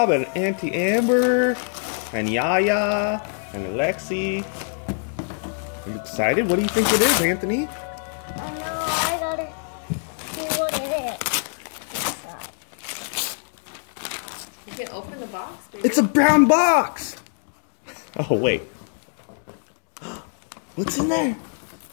and Auntie Amber and Yaya and Alexi. Are you excited? What do you think it is, Anthony? I know, I gotta see what it is. You can open the box. It's a brown box! Oh, wait. What's in there?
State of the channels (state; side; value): silent; right; 62 dB below the other